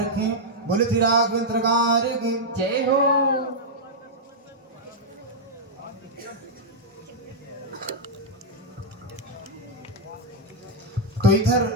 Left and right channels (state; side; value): normal; both; correlation -0.04